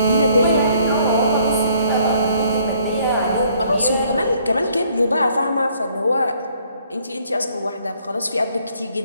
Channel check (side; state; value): both; inverted; correlation -0.64